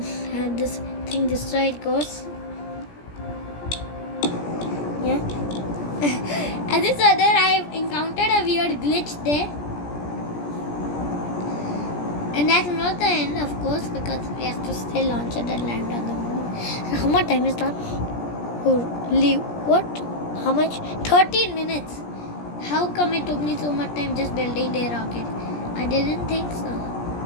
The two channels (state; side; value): late; right; 17 ms